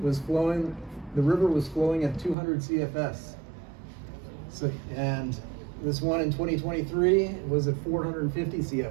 the river was flowing at 200 CFS. So, and this one in 2023 was at 450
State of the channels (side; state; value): left; drops out; at 2.4 s